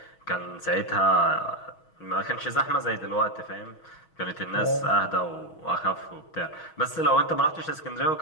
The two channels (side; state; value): right; late; 6.2 ms